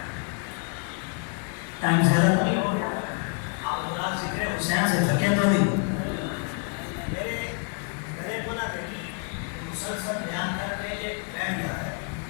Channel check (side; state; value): right; quieter; 39.6 dB